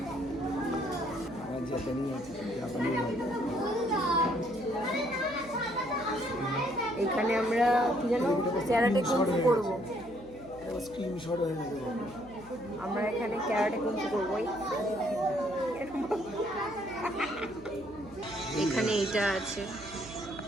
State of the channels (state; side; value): noise; right; hum, 21 dB below the sound